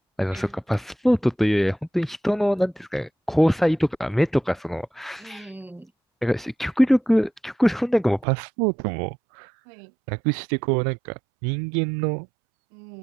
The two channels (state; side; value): drops out; left; at 8.2 s